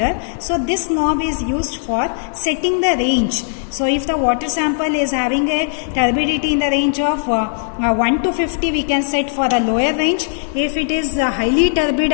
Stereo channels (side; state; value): right; silent; digital silence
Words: So this knob is used for setting the range. So if the water sample is having a turbidity in the range of 1 to 50, we can set for the lower range. If it is highly turbid